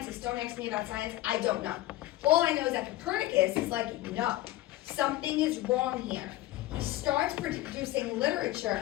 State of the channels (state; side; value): quieter; right; 16.2 dB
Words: don't ask me about science, I don't know. All I know is that Copernicus is like, no, something is wrong here. He starts producing literature